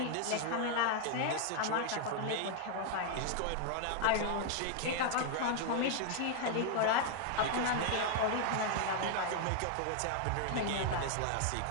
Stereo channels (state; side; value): different; both; correlation 0.00